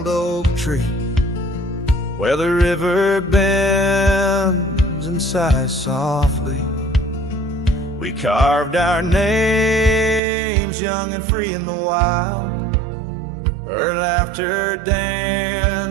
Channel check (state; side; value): drops out; left; at 10.2 s